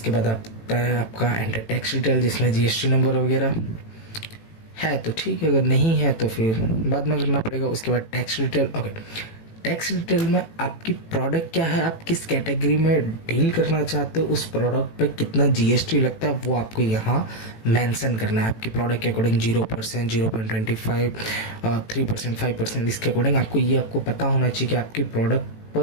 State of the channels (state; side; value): late; right; 18 ms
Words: बाद आता है आपका एंटर टैक्स डिटेल, जिसमें जीएसटी नंबर वगैरह है तो ठीक है, अगर नहीं है तो फिर बाद में करना पड़ेगा। उसके बाद tax detail. Okay, tax detail में आपकी प्रोडक्ट क्या है, आप किस कैटेगरी में डील करना चाहते हो, उस प्रोडक्ट पे कितना जीएसटी लगता है वो आपको यहाँ मेंशन करना है। आपकी प्रोडक्ट के अकॉर्डिंग 0%, 0.25, 3%, 5%, इसके अकॉर्डिंग आपको पता होना चाहिए कि आपकी प्रोडक्ट